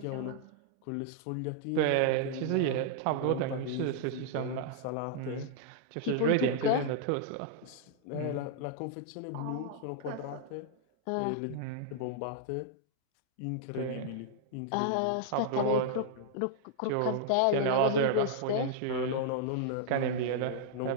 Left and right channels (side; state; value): both; different; correlation -0.01